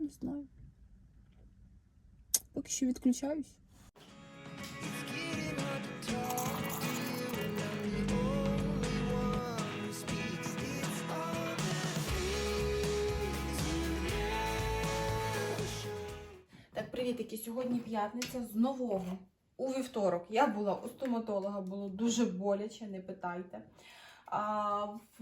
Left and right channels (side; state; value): both; identical; correlation 1.00